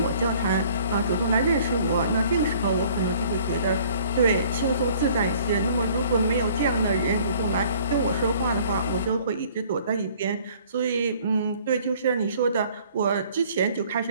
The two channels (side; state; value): both; inverted; correlation -0.55